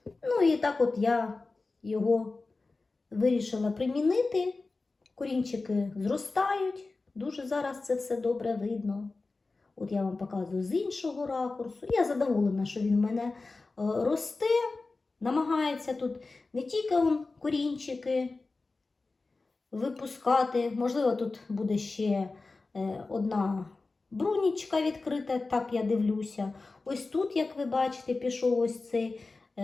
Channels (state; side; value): quieter; right; 3.6 dB